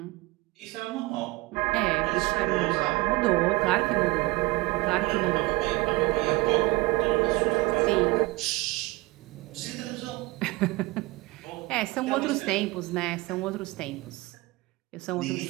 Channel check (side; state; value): left; quieter; 22.4 dB